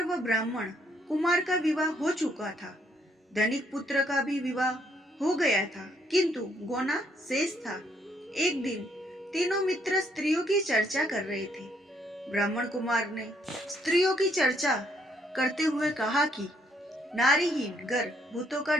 व ब्राह्मण कुमार का विवाह हो चुका था। धनिक पुत्र का भी विवाह हो गया था, किंतु गोना शेष था। एक दिन तीनों मित्र स्त्रियों की चर्चा कर रहे थे। ब्राह्मण कुमार ने स्त्रियों की चर्चा करते हुए कहा कि नारीहीन घर भूतों का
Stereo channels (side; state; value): both; normal; correlation 0.70